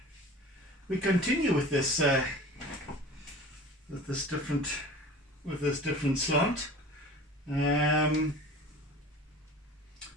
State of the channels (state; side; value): normal; both; correlation 0.40